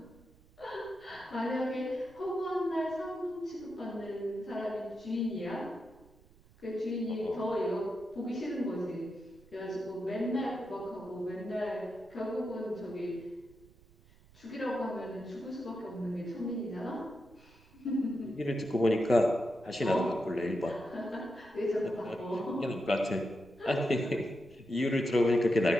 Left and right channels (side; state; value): right; noise; rumble, 26 dB below the sound